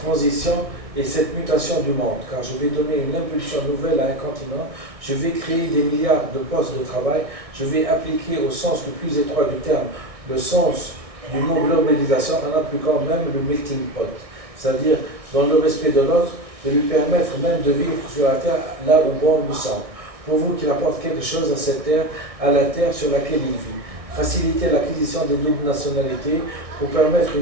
et cette mutation du monde, car je vais donner une impulsion nouvelle à un continent, je vais créer des milliards de postes de travail, je vais appliquer au sens le plus étroit du terme le sens du mot globalisation en appliquant même le melting pot, c'est-à-dire dans le respect de l'autre, de lui permettre même de vivre sur la terre là où bon lui semble. Pour vous qu'il apporte quelque chose à cette terre, à la terre sur laquelle il vit. Faciliter l'acquisition des doubles nationalités pour permettre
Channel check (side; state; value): left; late; 1.6 ms